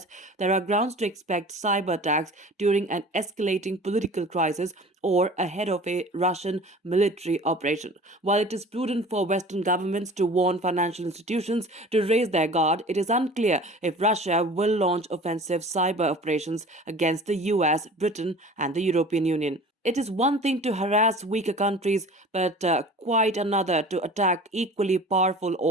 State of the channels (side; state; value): both; normal; correlation 0.42